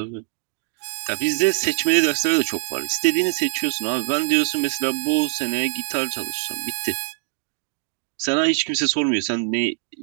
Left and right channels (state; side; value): silent; left; digital silence